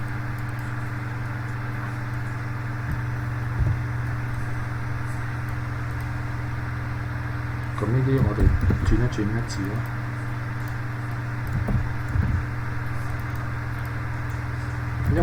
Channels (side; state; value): both; identical; correlation 1.00